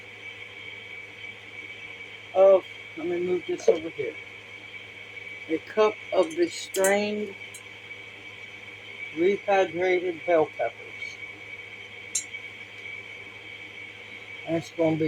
of, let me move this over here. A cup of the strained, rehydrated bell peppers. And it's going to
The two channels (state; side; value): identical; both; correlation 1.00